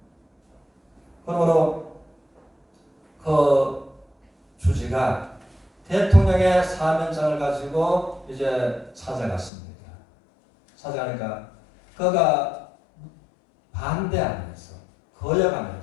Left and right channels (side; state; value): right; drops out; at 9.5 s